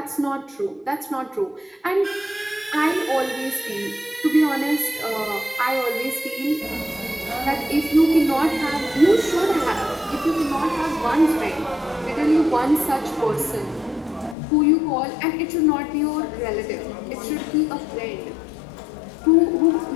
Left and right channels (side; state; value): right; drops out; at 14.4 s